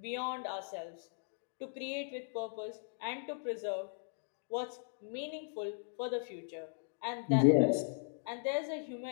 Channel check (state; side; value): silent; right; digital silence